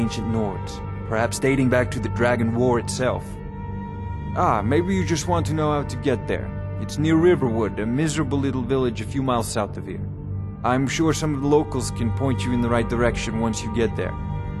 Nords, perhaps dating back to the Dragon War itself. Ah, maybe you just want to know how to get there. It's near Riverwood, a miserable little village a few miles south of here. I'm sure some of the locals can point you in the right direction once you get there.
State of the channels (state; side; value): identical; both; correlation 1.00